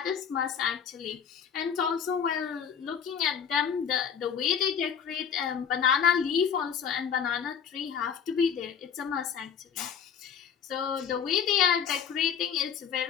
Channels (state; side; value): quieter; right; 7.6 dB